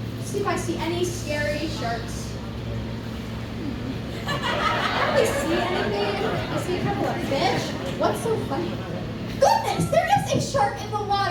See if I see any scary sharks. I don't really see anything. I see a couple of fish. What's so funny? Goodness, there is a shark in the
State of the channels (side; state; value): both; identical; correlation 1.00